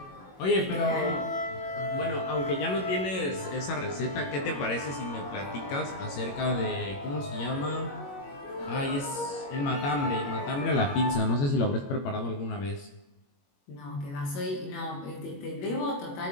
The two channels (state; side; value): late; right; 21 ms